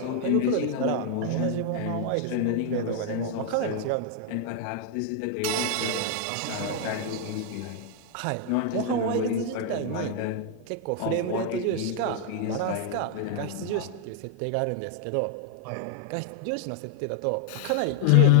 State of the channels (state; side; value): different; both; correlation 0.00